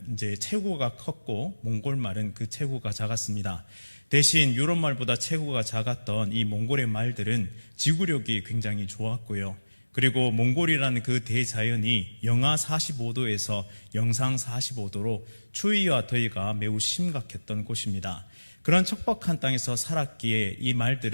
이제 체구가 컸고 몽골 말은 그 체구가 작았습니다. 대신 유럽 말보다 체구가 작았던 이 몽골의 말들은 지구력이 굉장히 좋았고요. 그리고 몽골이라는 그 대자연이 영하 45도에서 영상 45도로 추위와 더위가 매우 심각했던 곳입니다. 그런 척박한 땅에서 살았기에 이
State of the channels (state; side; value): inverted; both; correlation -1.00